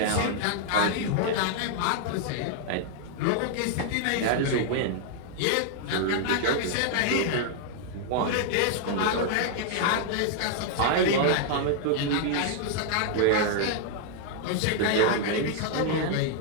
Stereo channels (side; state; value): both; different; correlation 0.00